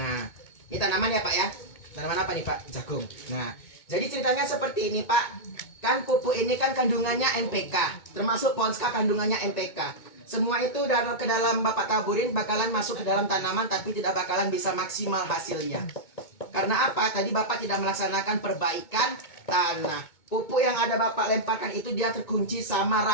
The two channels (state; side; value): late; right; 2.2 ms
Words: ini tanaman ya Pak ya. Tanaman apa nih Pak? Jagung. Nah jadi ceritanya seperti ini Pak. Kan pupuk ini kan kandungannya NPK, termasuk Ponska kandungannya NPK. Semua itu ke dalam Bapak taburin bakalan masuk ke dalam tanaman, tapi tidak bakalan bisa maksimal hasilnya. Karena apa? Tadi Bapak tidak melaksanakan perbaikan tanah. Pupuk yang ada Bapak lemparkan itu dia terkunci sama